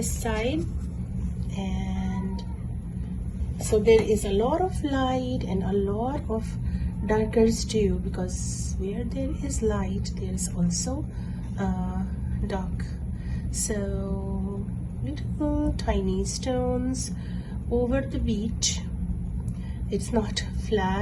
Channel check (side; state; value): both; identical; correlation 1.00